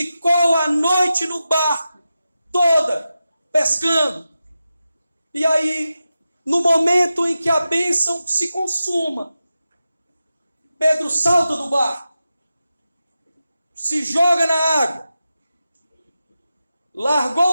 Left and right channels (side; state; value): both; inverted; correlation -0.92